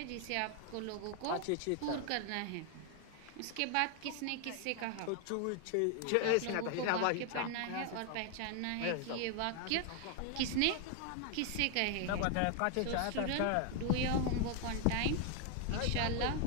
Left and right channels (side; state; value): both; different; correlation 0.00